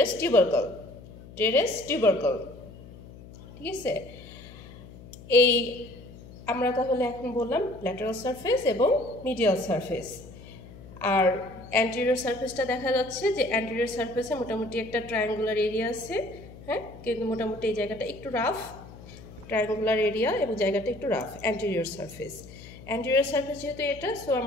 টিউবারকল। ঠিক আছে, এই আমরা তাহলে এখন বললাম ল্যাটারাল সারফেস এবং মিডিয়াল সারফেস। আর অ্যান্টেরিয়র সারফেসটা দেখা যাচ্ছে যে অ্যান্টেরিয়র সারফেসে মোটামুটি একটা ট্রায়াঙ্গুলার এরিয়া আছে, হ্যাঁ, কিন্তু মোটামুটি এই জায়গাটা একটু রাফ, ট্রায়াঙ্গুলার এরিয়া এবং জায়গাটা একটু রাফ। অ্যান্টেরিয়র সারফেস যেহেতু এটা, সো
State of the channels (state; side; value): noise; left; hum, 18 dB below the sound